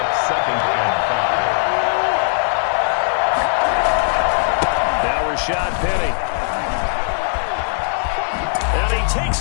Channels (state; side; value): silent; right; 67 dB below the other